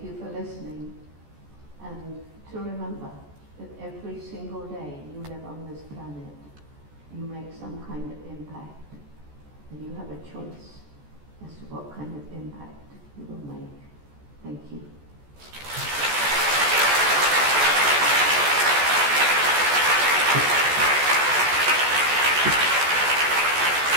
you for listening, and to remember that every single day you live on this planet, you make some kind of impact, and you have a choice as to what kind of impact you will make. Thank you.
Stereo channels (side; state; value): left; late; 14 ms